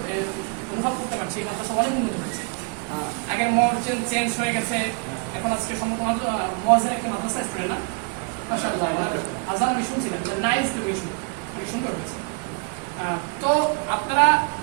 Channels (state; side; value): quieter; left; 35.3 dB